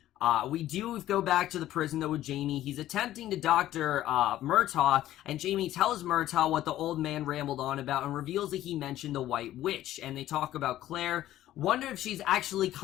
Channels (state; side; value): quieter; right; 13.7 dB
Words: We do go back to the prison, though, with Jamie. He's attempting to doctor Murtagh, and Jamie tells Murtagh what the old man rambled on about and reveals that he mentioned the White Witch. And they talk about Claire. Wonder if she's actually